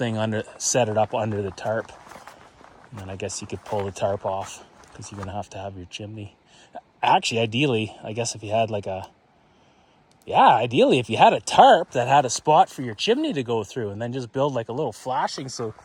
set it up under the tarp. And then I guess you could pull the tarp off, because you're going to have your chimney. Actually, ideally, I guess if you had ideally if you had a tarp that had a spot for your chimney to go through, and then just build like a little flashing so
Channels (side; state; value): both; identical; correlation 1.00